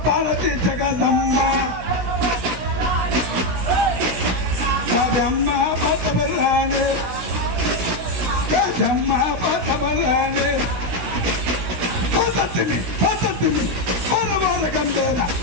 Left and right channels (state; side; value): late; left; 17 ms